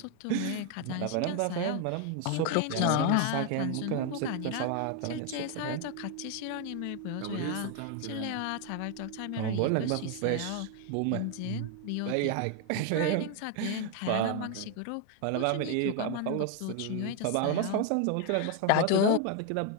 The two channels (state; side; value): different; both; correlation 0.00